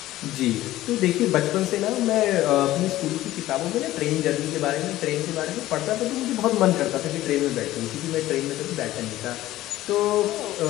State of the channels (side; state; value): right; quieter; 15.4 dB